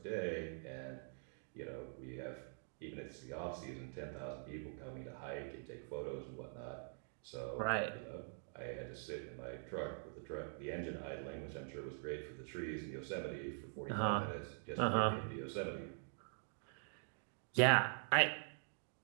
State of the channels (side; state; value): left; silent; digital silence